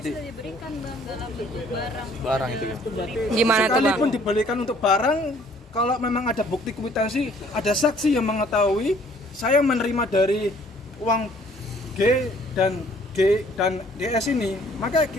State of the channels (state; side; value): normal; both; correlation 0.59